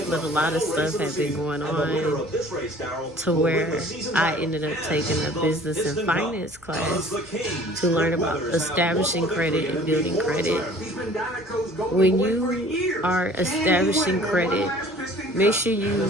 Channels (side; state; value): both; normal; correlation 0.50